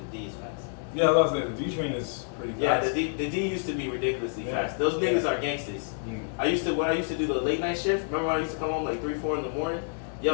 D is fast. Yeah, I was saying the D train is pretty fast. Yeah, the D used to be ridiculously fast. Those niggas are gangsters. When I used to do the late night shift. Remember when I used to come home like 3-4 in the morning?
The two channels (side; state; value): right; silent; digital silence